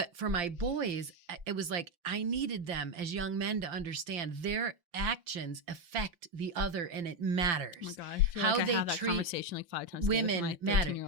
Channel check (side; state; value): left; late; 5.8 ms